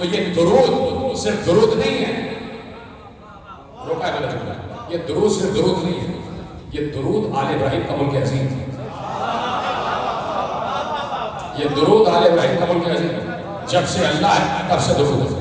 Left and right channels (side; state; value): both; identical; correlation 1.00